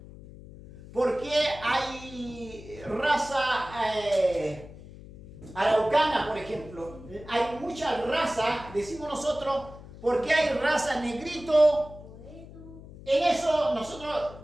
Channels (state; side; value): noise; left; hum, 17 dB below the sound